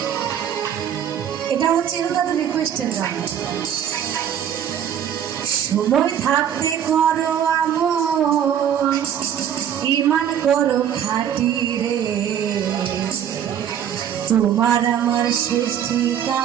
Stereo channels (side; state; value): left; quieter; 9.4 dB